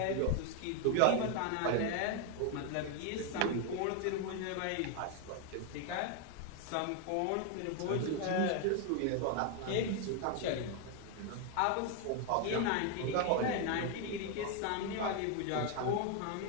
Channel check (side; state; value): both; different; correlation 0.01